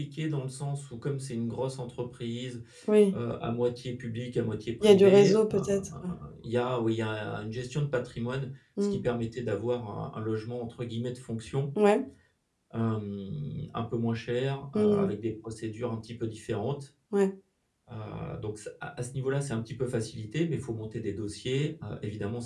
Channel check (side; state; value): both; identical; correlation 1.00